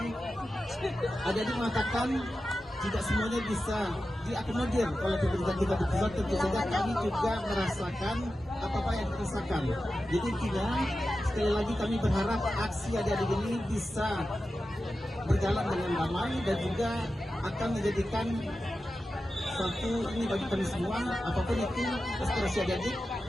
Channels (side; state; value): both; normal; correlation 0.92